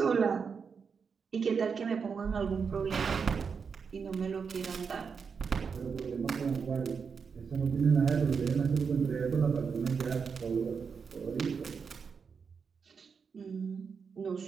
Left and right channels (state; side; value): quieter; left; 5.9 dB